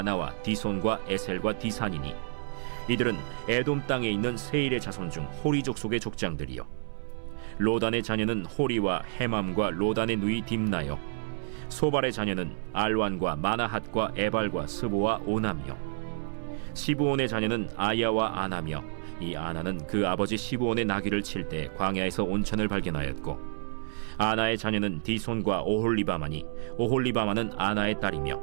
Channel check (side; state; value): left; silent; 58 dB below the other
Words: 디손과 에셀과 디산이니 이들은 에돔 땅에 있는 세일의 자손 중 호리 족속의 족장들이요 로단의 자녀는 호리와 헤맘과 로단의 누이 딥나요 소발의 자녀는 알완과 마나핫과 에발과 스보와 오남이요 시브온의 자녀는 아야와 아나며 이 아나는 그 아버지 시브온의 나귀를 칠 때 광야에서 온천을 발견하였고 아나의 자녀는 디손과 오홀리바마니 오홀리바마는 아나의 딸이며